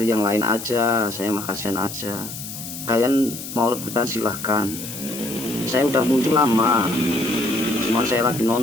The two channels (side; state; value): left; noise; hiss, 10 dB below the sound